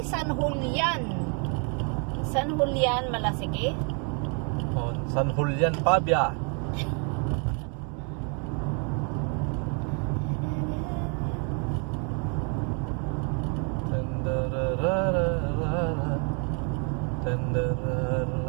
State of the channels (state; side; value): quieter; left; 38.2 dB